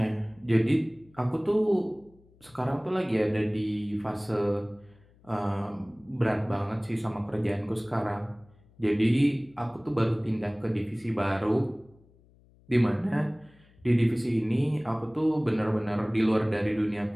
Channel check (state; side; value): noise; left; hum, 29 dB below the sound